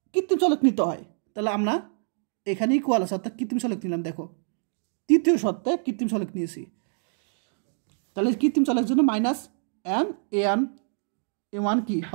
কৃত্রিম চলক নিতে হয়। তাহলে আমরা এখানে ইকুয়াল আছে অর্থাৎ কৃত্রিম চলক নিলাম। দেখো তৃতীয় শর্তে কৃত্রিম চলক নিয়েছি, তাহলে কৃত্রিম চলকের জন্য -m a1 কি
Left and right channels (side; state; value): left; silent; 61 dB below the other